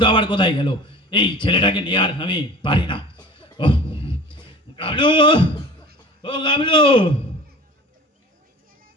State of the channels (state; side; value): normal; both; correlation 0.41